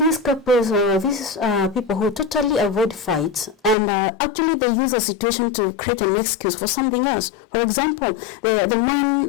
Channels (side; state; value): right; drops out; at 3.8 s